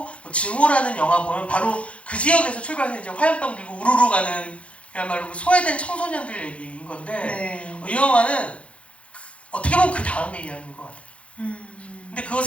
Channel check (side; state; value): right; late; 0.062 ms